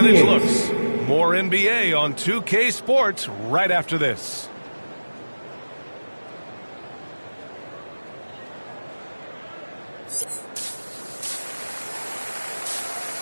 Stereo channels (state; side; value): inverted; both; correlation -1.00